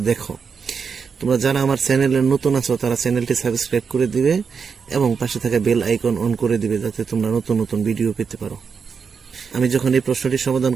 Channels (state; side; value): quieter; left; 5.9 dB